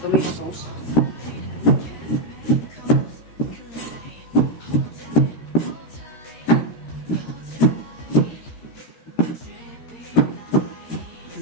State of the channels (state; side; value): late; right; 13 ms